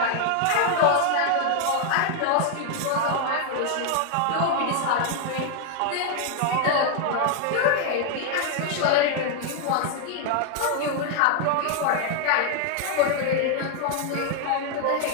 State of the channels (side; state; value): both; different; correlation 0.00